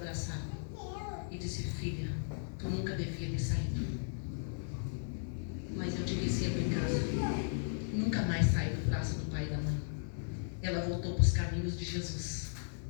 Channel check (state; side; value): silent; right; 54 dB below the other